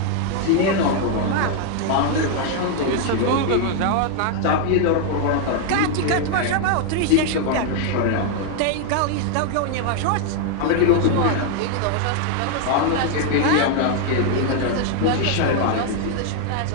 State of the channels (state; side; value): different; both; correlation 0.00